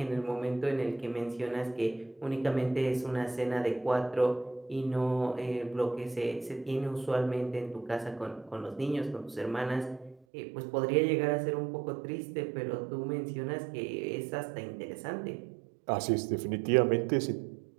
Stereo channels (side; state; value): left; drops out; at 10.2 s